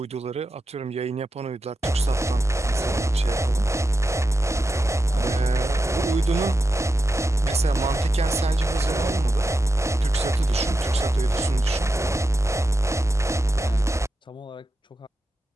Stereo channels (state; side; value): normal; both; correlation 0.89